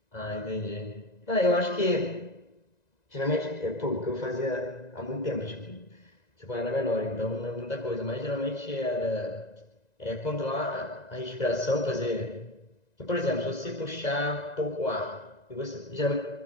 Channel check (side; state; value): right; late; 1.9 ms